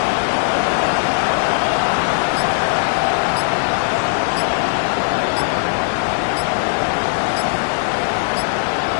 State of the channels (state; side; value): silent; right; digital silence